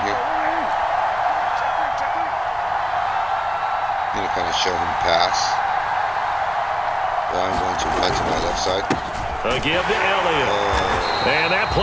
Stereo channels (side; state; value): both; identical; correlation 1.00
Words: here. I'm going to kind of show him pass. But I'm going to run to my left side. A give to Elliott. And that